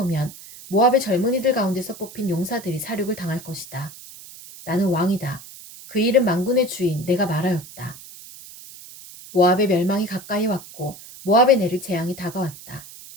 모압의 젊은이들 가운데서 뽑힌 용사들이 사륙을 당할 것이다. 나는 왕이다. 그 이름 만군의 주인 내가 말하였다. 모압의 멸망이 가까이 왔고 모압에 내릴 재앙이 다가왔다.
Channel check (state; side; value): noise; right; hiss, 17 dB below the sound